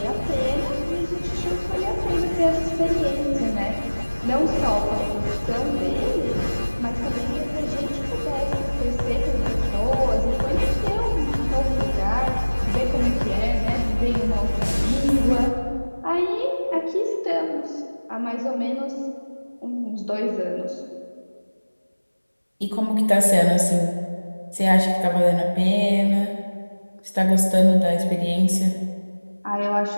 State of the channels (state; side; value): inverted; both; correlation -1.00